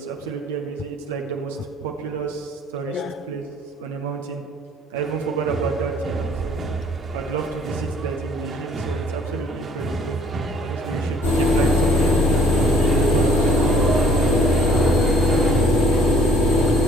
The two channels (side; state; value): both; normal; correlation 0.58